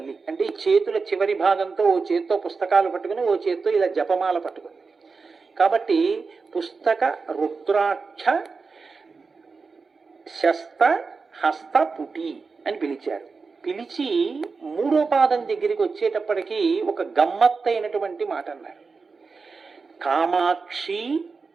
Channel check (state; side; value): quieter; left; 4.6 dB